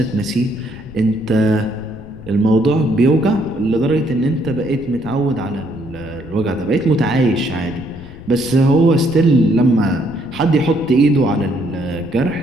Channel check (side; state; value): left; noise; rumble, 18 dB below the sound